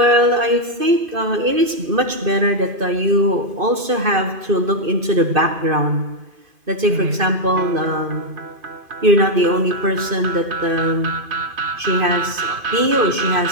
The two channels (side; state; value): left; late; 2.5 ms